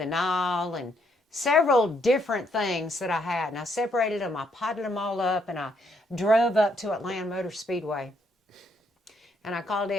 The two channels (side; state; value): both; normal; correlation 0.72